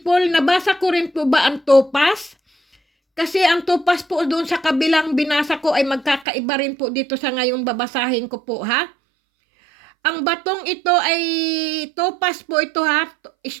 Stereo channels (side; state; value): left; drops out; at 6.2 s